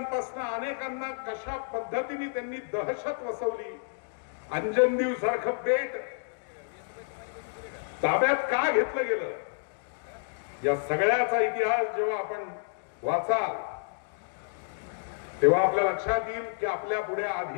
अनेकांना कशा पद्धतीने त्यांनी दहशत वसवली. अंजनदीव सारखं बेट ताब्यात का घेतलं गेलं या सगळ्याचा इतिहास जेव्हा आपण वाचाल तेव्हा आपल्या लक्षात येईल की आपल्या पुढे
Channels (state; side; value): silent; right; digital silence